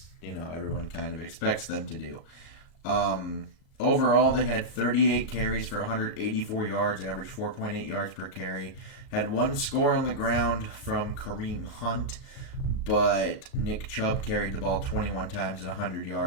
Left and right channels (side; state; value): right; late; 37 ms